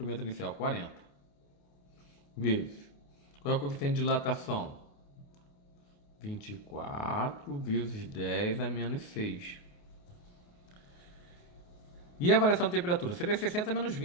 inicial? 40. Vezes. Qual é o coeficiente de dilatação? 24 vezes 10 a menos 6. E a variação de temperatura? Seria 60 menos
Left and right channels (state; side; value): late; right; 28 ms